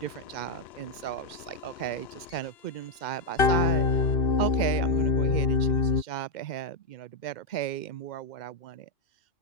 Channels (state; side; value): late; right; 2.1 ms